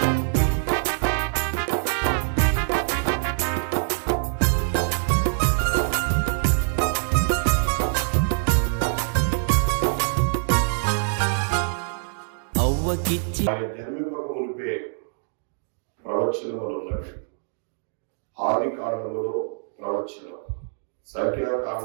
జన్మింపక మునిపే ప్రవచనములు ఉన్నవి. ఆది కాండములో ప్రవచనం,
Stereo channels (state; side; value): silent; left; digital silence